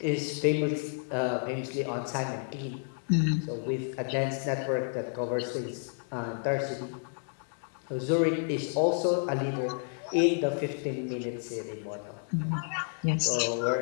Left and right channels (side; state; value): right; silent; 57 dB below the other